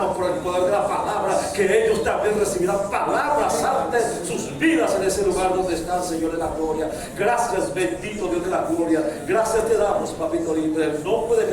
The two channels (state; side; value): identical; both; correlation 1.00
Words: por el poder de la palabra que ellos también recibirán palabras santas en sus vidas en ese lugar donde están, Señor de la gloria. Gracias, bendito Dios de la gloria. Gracias te damos, papito lindo. En el nombre